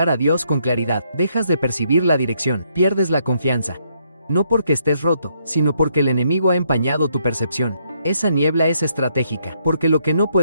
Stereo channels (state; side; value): inverted; both; correlation -0.73